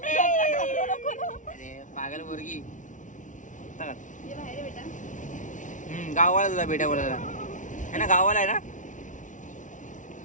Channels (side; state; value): right; late; 0.37 ms